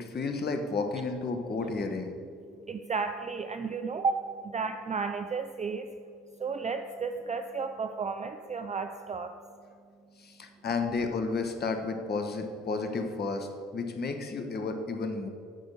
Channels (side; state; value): both; normal; correlation 0.48